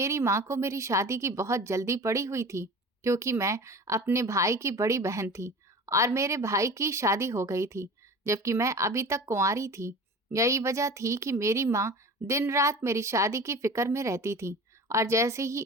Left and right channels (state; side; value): normal; both; correlation 0.37